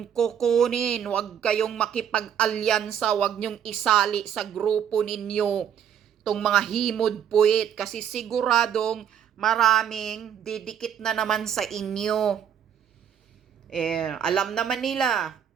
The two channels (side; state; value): left; quieter; 8.9 dB